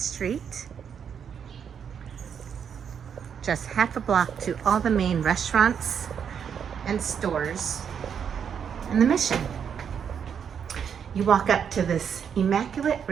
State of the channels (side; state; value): left; quieter; 7.6 dB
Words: just half a block to all the main restaurants and stores in the Mission. You walk up to this immaculate